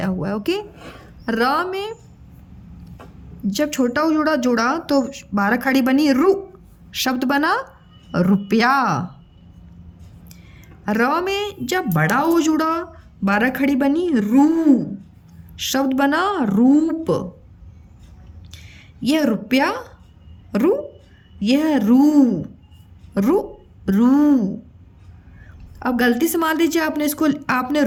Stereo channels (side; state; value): both; identical; correlation 1.00